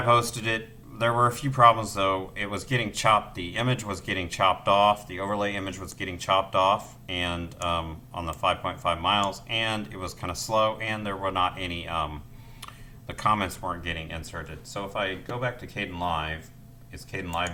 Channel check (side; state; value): both; identical; correlation 1.00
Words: posted it. There were a few problems though. It was getting chopped. The image was getting chopped off. The overlay image was getting chopped off, and on the 5.5 miles, and it was kind of slow, and there were not any. The comments weren't getting inserted. So if I go back to Caden Live, is Caden Live